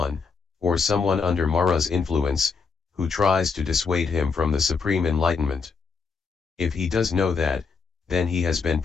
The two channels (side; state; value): right; quieter; 5.1 dB